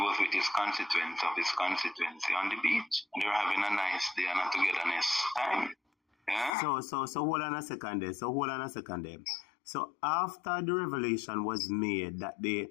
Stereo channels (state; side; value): drops out; right; at 6.5 s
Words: with his constituents of his constituency on the beach. They were having a nice day and a togetherness time. Yeah? So hold on a second there. So after the revelation was made that the